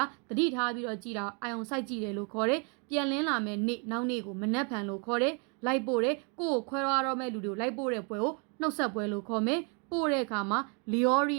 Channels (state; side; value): quieter; left; 36.5 dB